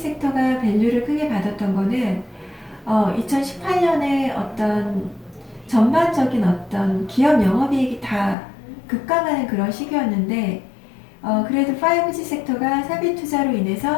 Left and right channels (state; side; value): drops out; right; at 8.3 s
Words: 밸류를 크게 받았던 거는 2018년에 어떤 전반적인 어떤 기업 영업이익이 다 급감하는 그런 시기였는데 그래도 5G 섹터가 사비 투자로